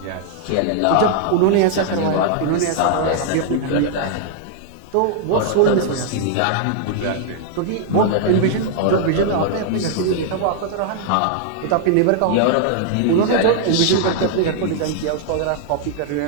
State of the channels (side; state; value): both; different; correlation 0.00